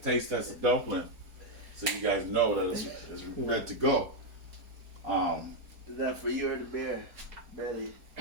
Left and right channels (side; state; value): left; late; 4.6 ms